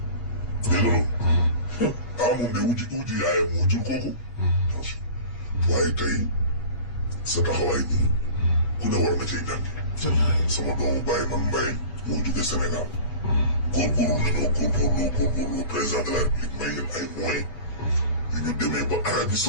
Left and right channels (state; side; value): late; right; 8.4 ms